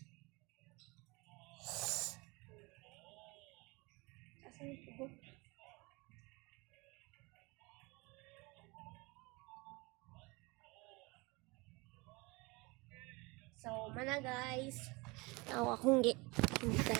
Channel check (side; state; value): left; quieter; 25.9 dB